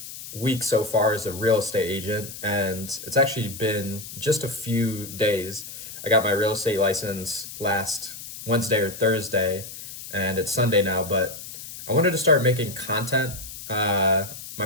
week so far as a real estate agent, and it's actually been just a few days. I got my real estate license last Wednesday or Thursday, and it's Sunday now, but I wanted to start making content. My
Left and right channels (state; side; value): noise; left; hiss, 12 dB below the sound